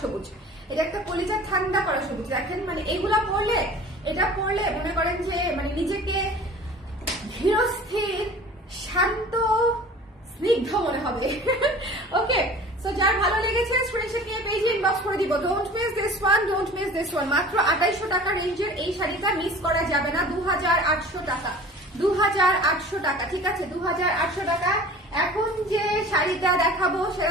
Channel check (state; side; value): normal; both; correlation 0.43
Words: সবুজ, এটা একটা কলিজা ঠান্ডা করা সবুজ। দেখেন মানে এগুলা পরলে, এটা পরলে মনে করেন যে মানে নিজেকে ধীরস্থির, শান্ত, স্নিগ্ধ মনে হবে। ওকে, সো যার ভালো লেগেছে স্ক্রিনশট নিয়ে পেজে ইনবক্স করে দিব। Don't miss this one, don't miss this one. মাত্র 2800 টাকা রেঞ্জের এই শাড়িটা মিস করা যাবে না। 2800 টাকা, 2800 টাকা, ঠিক আছে, 2800 টাকা। এখন যে শাড়িটা দেখাবো